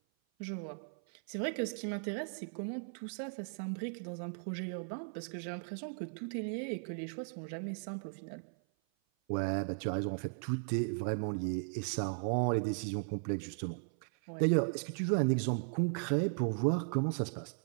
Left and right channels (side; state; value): left; silent; 53 dB below the other